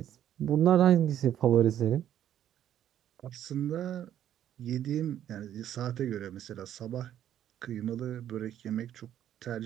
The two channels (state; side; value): quieter; left; 10.9 dB